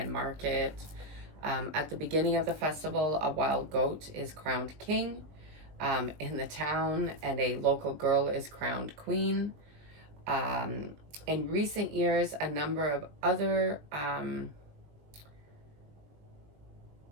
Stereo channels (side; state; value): left; late; 20 ms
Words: market. At the beginning of the festival, a wild goat is crowned king in the town, and a local girl is crowned queen. In recent years, a number of other